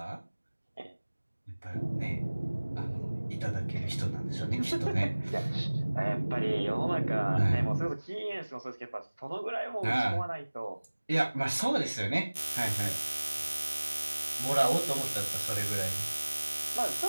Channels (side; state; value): both; inverted; correlation -1.00